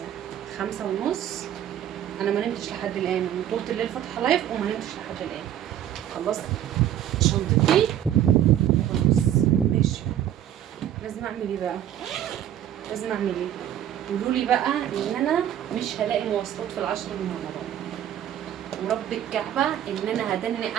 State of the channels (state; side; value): quieter; left; 11.0 dB